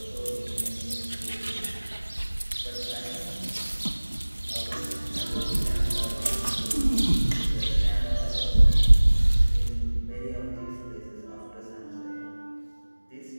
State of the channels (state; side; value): inverted; both; correlation -1.00